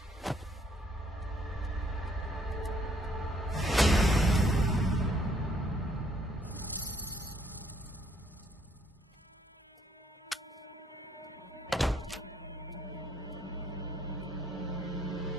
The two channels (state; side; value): normal; both; correlation 0.67